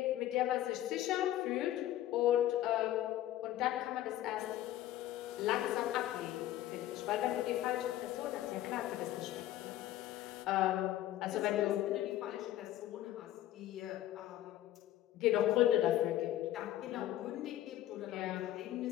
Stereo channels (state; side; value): quieter; right; 13.6 dB